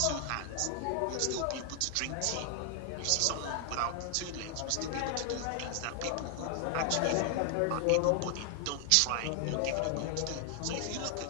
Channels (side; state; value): both; different; correlation 0.00